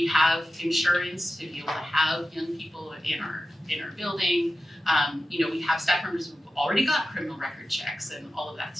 have insurance to be able to have young people in our building. We have staff members who've already got criminal record checks and all of that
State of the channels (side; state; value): both; normal; correlation 0.93